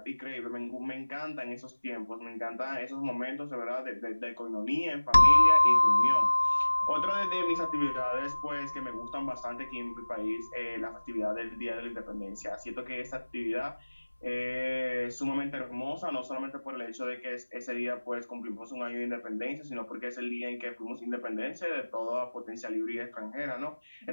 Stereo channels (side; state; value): both; inverted; correlation -1.00